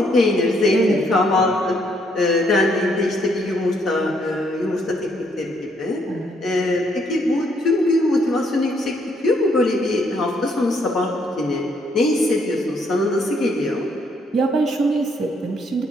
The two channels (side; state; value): both; normal; correlation 0.71